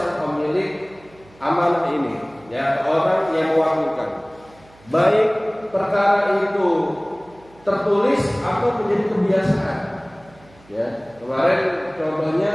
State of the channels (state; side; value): noise; right; hum, 27 dB below the sound